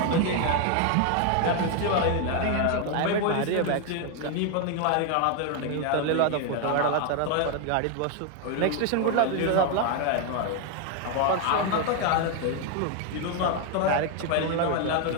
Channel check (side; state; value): both; different; correlation 0.01